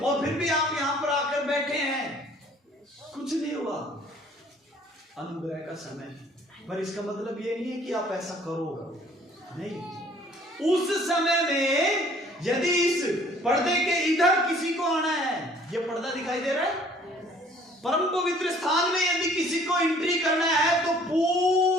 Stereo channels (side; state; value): both; normal; correlation 0.56